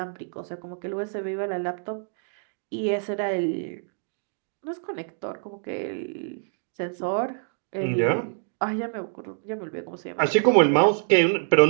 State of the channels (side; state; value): left; silent; digital silence